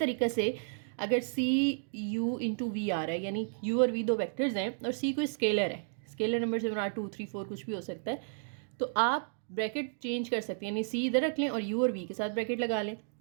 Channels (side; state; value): left; silent; digital silence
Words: से अगर सी यू इंटू वी आ रहा है, यानी यू और वी दो वेक्टर्स हैं और सी कोई स्केलर है, स्केलर नंबर से बना 2 3 4 कुछ भी हो सकता है, तो आप ब्रैकेट चेंज कर सकते हैं, यानी सी इधर रख लें और यू और वी के साथ ब्रैकेट लगा लें,